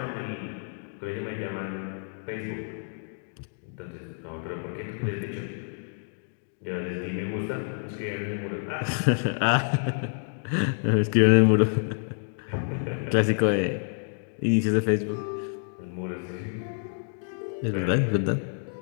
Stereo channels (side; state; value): right; silent; digital silence